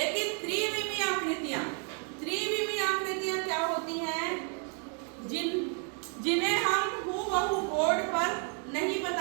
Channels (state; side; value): quieter; left; 39.4 dB